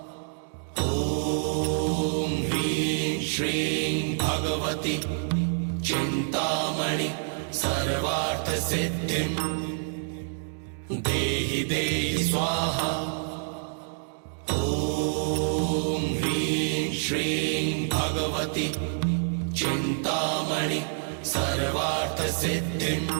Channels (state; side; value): silent; left; digital silence